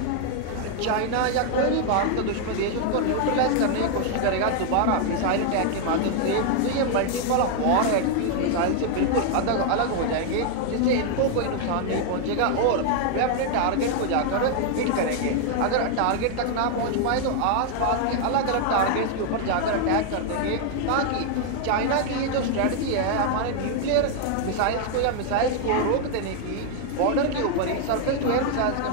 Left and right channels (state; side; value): different; both; correlation 0.00